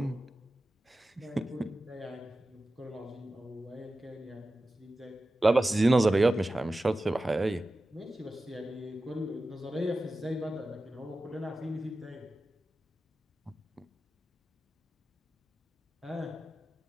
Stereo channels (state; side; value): normal; both; correlation 0.94